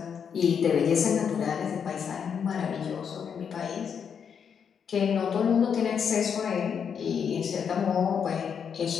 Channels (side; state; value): right; quieter; 7.2 dB